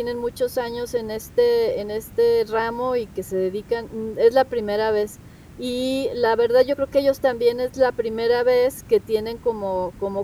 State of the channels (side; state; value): both; identical; correlation 1.00